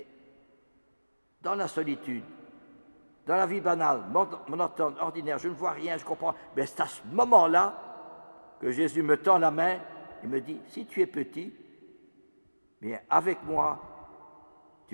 dans la solitude, dans la vie banale, monotone, ordinaire, je ne vois rien, je comprends. Mais c'est à ce moment-là que Jésus me tend la main et me dit, si tu es petit, bien avec moi,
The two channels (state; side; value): inverted; both; correlation -1.00